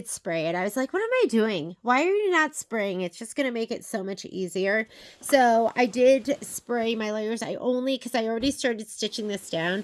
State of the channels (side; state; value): both; identical; correlation 1.00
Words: spray it. I was like, what am I doing? Why are you not spraying? It's just going to make it so much easier. So I did spray my layers. Because I already started stitching this down.